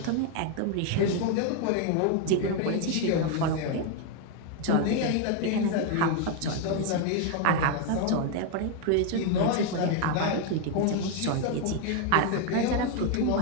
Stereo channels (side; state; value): both; different; correlation 0.01